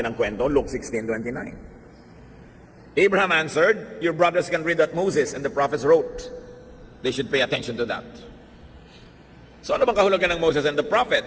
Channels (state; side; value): identical; both; correlation 1.00